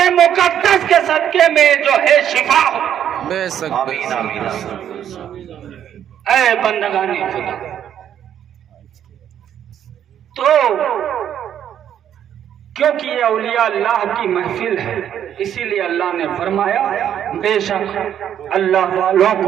مقدس کے صدقے میں جو ہے شفا ہو۔ بے شک، آمین آمین۔ اے بندگان خدا، تو کیونکہ یہ اولیاء اللہ کی محفل ہے، اسی لیے اللہ نے فرمایا بے شک اللہ والوں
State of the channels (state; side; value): quieter; left; 9.9 dB